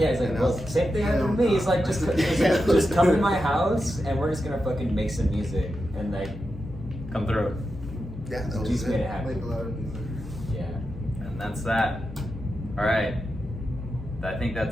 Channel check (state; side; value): noise; left; hum, 12 dB below the sound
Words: he's like, And I well, was- same thing happened to me. He's like, just come to my house and we're just gonna fucking make some music. And like, Come through. Yeah, that was Juice made it it. happen. Make a lot of music. Yeah. And that's that. All right. I think